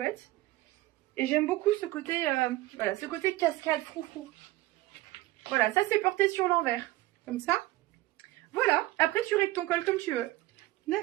Et j'aime beaucoup ce côté, voilà, ce côté cascade, froufrou. Voilà, ça, c'est porté sur l'envers. Comme ça. Voilà. Après, tu règles ton col comme tu veux.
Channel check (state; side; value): quieter; left; 17.9 dB